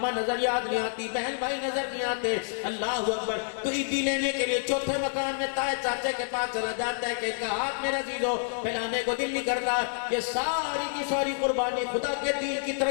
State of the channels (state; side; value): silent; right; digital silence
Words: नजर याद नहीं आती, बहन भाई नजर नहीं आते। अल्लाह अकबर, तो ईदी लेने के लिए चौथे मकान में ताए चाचे के पास चला जाता है कि इनका हाथ मेरा जीजो फैलाने को दिल नहीं करता। ये सारी की सारी कुर्बानी खुदा के दीन की